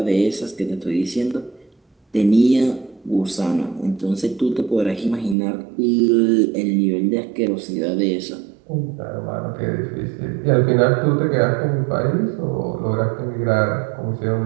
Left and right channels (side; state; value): left; drops out; at 5.4 s